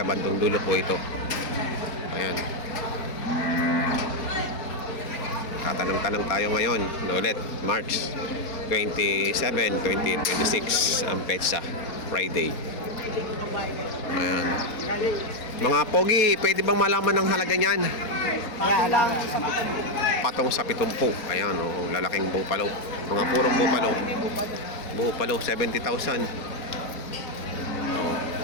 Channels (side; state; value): right; late; 4.2 ms